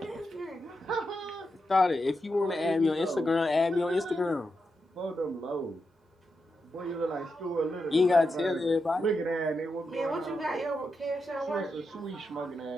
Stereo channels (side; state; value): both; normal; correlation 0.86